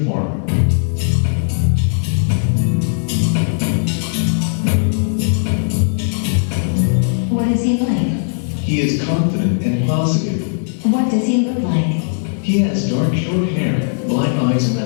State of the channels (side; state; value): right; silent; digital silence